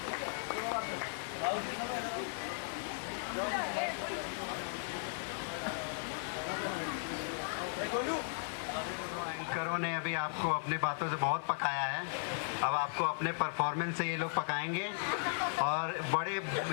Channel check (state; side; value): silent; right; 53 dB below the other